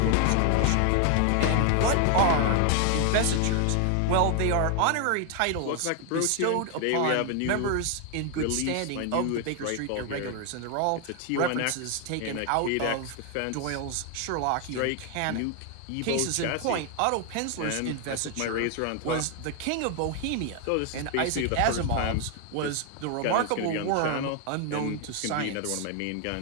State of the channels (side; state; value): both; different; correlation 0.00